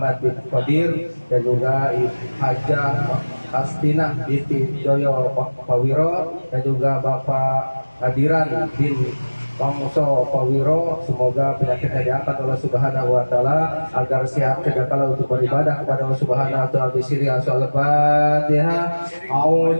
bin Qadir dan juga Hajah Astinah binti Joyo Pawiro dan juga Bapak Hadiran bin Pangso Pawiro, semoga penyakitnya diangkat oleh Subhanahu wa taala agar sehat kedakala untuk beribadah kepada Allah Subhanahu wa taala. Bisiri Al-Fatihah.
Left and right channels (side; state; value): both; inverted; correlation -1.00